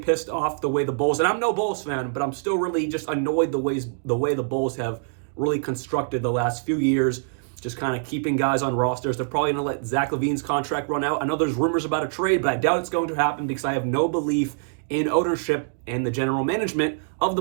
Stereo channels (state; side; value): silent; left; digital silence